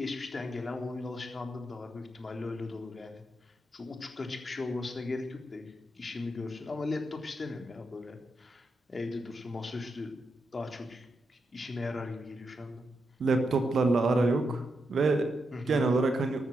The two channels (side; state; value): both; normal; correlation 0.84